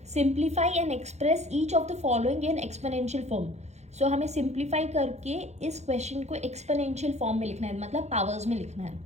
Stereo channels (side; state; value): left; late; 0.32 ms